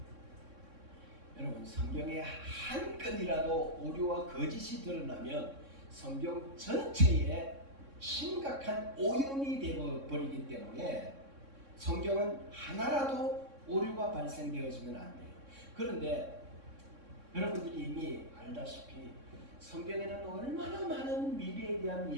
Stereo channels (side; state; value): left; late; 3.6 ms